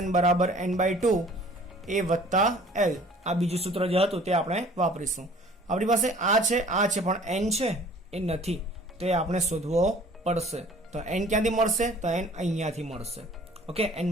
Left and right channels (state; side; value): normal; both; correlation 0.51